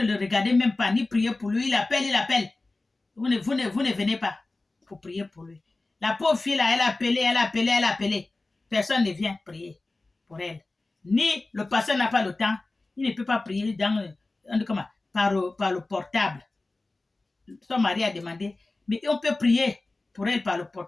le regardez même pas, ni prier pour lui. Il appelle. Vous ne venez pas pour prier pour lui. La pauvre fille, là, elle a appelé. Personne ne vient prier pour elle. Ni le pasteur n'a pas le temps. Il ne peut pas prier par le portable. Son mari a demandé, mais on peut prier pour elle par le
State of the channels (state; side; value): quieter; right; 3.2 dB